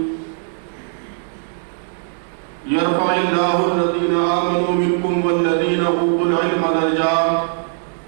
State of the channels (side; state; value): left; silent; 65 dB below the other